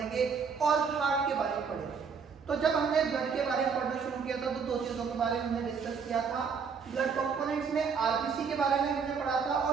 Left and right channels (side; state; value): left; quieter; 5.9 dB